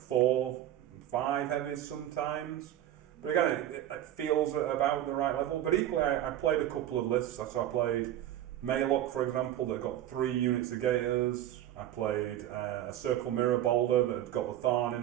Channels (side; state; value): left; quieter; 12.3 dB